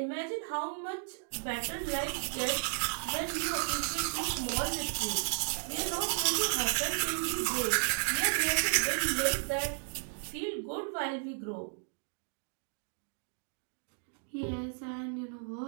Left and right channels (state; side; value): silent; left; 55 dB below the other